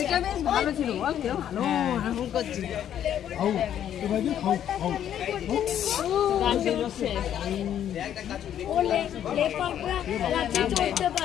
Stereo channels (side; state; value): right; quieter; 10.2 dB